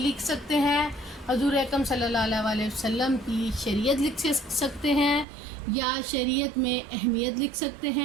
سکتے ہیں، حضور اکرم صلی اللہ علیہ وسلم کی شریعت لکھ سکتے ہیں، یا شریعت میں اہمیت لکھ سکتے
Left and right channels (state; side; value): drops out; left; at 5.2 s